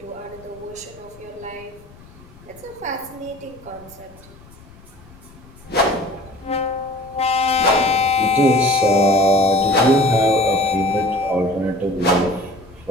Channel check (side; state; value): left; noise; rumble, 23 dB below the sound